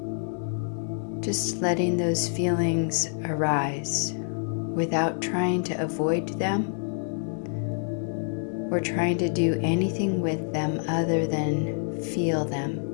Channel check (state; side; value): silent; right; digital silence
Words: just letting those feelings arise without trying to avoid them or trying to do anything with them other than feel them.